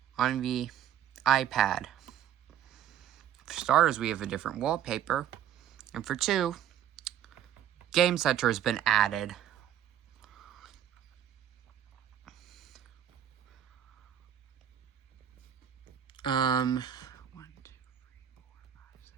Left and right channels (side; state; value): left; quieter; 10.4 dB